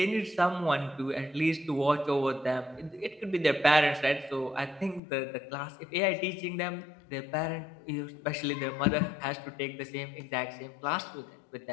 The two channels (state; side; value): drops out; right; at 5.0 s